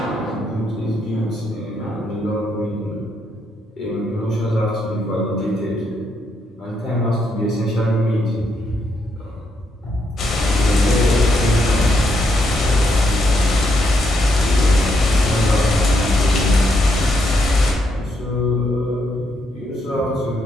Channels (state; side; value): normal; both; correlation 0.78